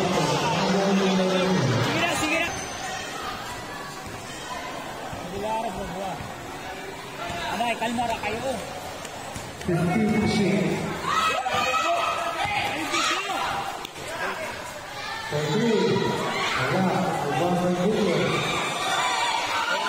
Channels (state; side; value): identical; both; correlation 1.00